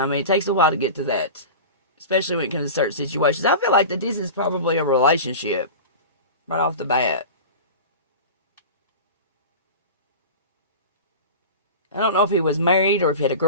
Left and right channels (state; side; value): inverted; both; correlation -0.32